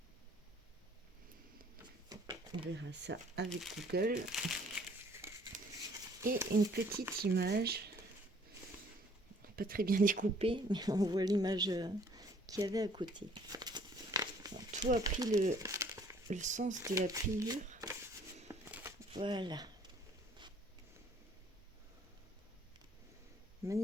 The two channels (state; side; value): normal; both; correlation 0.58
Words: On verra ça avec Google. Et une petite image, pas très bien découpée, mais on voit l'image qu'il y avait à côté. Alors, tout a pris le sens de la pliure. Voilà.